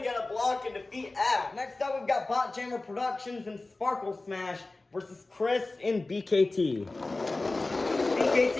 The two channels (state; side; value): quieter; right; 3.2 dB